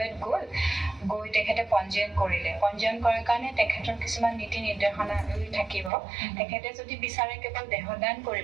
গৈ তেখেতে পঞ্জীয়ন কৰিলে পঞ্জীয়ন কৰাৰ কাৰণে তেখেতৰ কিছুমান নীতি নিৰ্দেশনাৱলী থাকিব তেখেতে যদি বিচাৰে কেৱল দেহদান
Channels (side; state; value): left; drops out; at 5.9 s